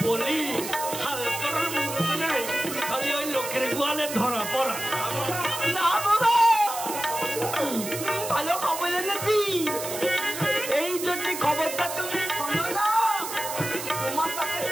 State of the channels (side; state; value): right; noise; hiss, 7 dB below the sound